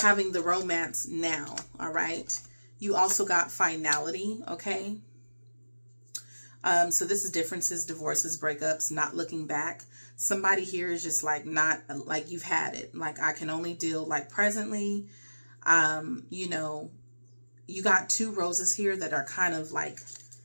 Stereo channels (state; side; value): inverted; both; correlation -1.00